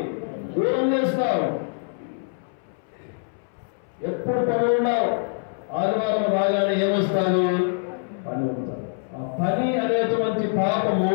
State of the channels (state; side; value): silent; right; 62 dB below the other